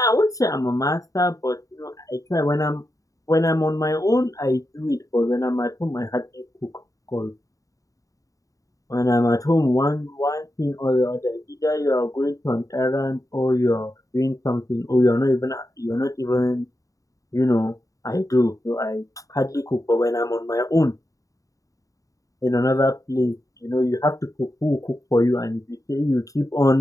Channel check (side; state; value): right; late; 0.16 ms